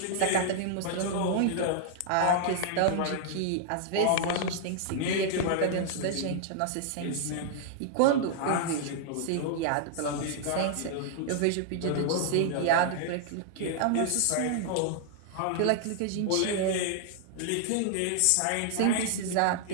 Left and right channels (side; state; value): both; different; correlation -0.01